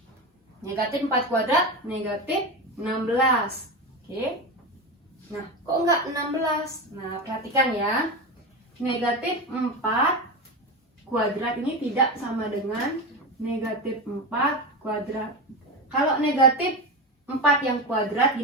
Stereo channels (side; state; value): both; normal; correlation 0.19